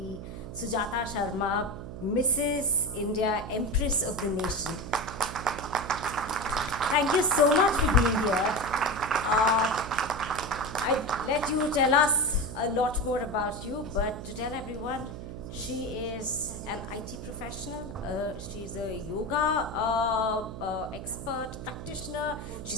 Sujata Sharma, Mrs. India, Empress of the Nation. Thank you so much for being here. I'd let you tell us a lot more about you, but to tell everyone, she is an IT professional. She's a yoga expert, practitioner.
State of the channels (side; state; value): right; noise; hum, 10 dB below the sound